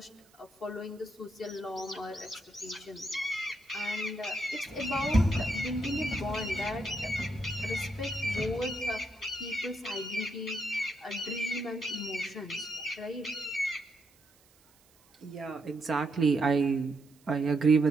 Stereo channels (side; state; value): right; noise; hiss, 30 dB below the sound